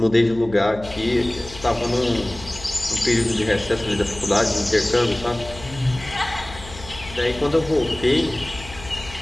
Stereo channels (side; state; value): left; noise; hum, 16 dB below the sound